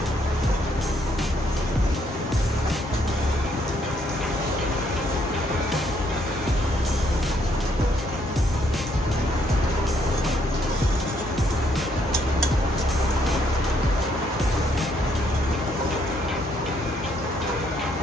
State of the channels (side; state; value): both; normal; correlation 0.70